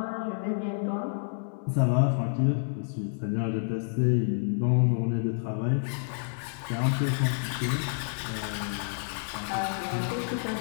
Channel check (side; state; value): right; silent; 59 dB below the other